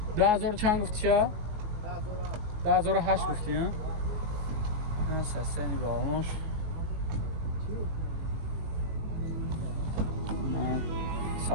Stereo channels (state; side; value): late; left; 19 ms